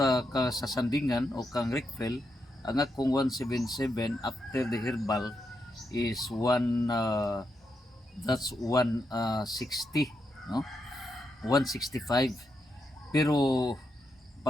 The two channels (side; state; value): both; normal; correlation 0.83